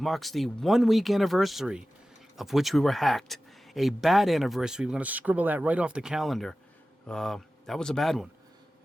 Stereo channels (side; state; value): both; normal; correlation 0.95